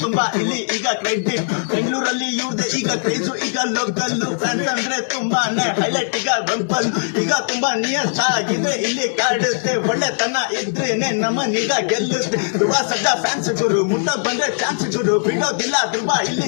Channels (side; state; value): right; silent; digital silence